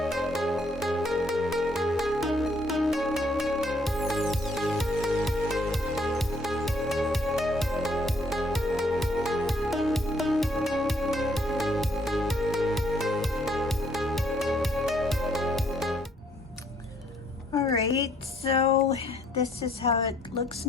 Alright, so this is how it looks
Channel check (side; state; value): both; normal; correlation 0.66